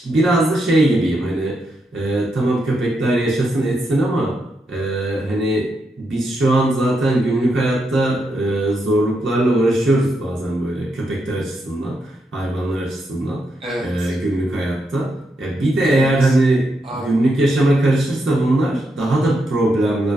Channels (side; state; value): both; normal; correlation 0.82